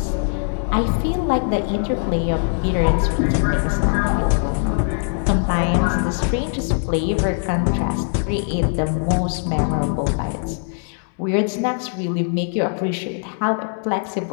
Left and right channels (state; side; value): silent; right; 65 dB below the other